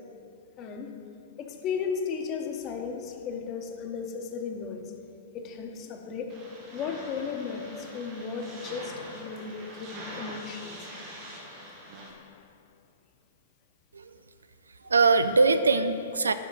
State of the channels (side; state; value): both; inverted; correlation -0.57